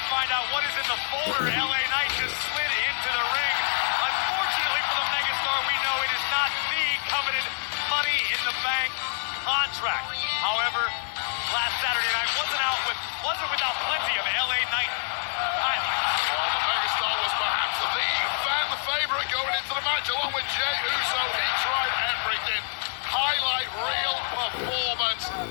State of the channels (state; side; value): silent; right; digital silence